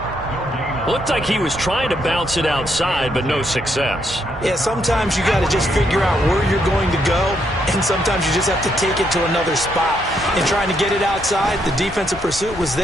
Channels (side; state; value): both; normal; correlation 0.75